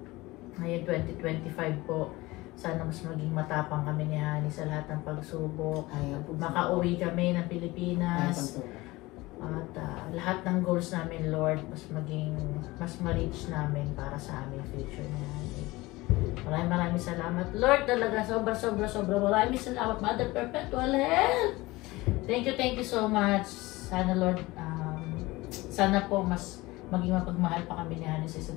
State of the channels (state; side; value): quieter; right; 20.5 dB